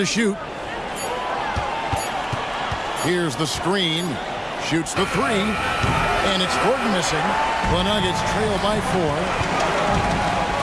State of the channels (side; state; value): both; identical; correlation 1.00